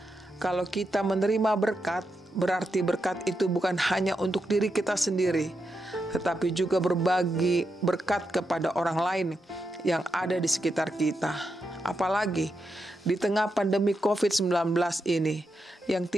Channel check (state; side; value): normal; both; correlation 0.85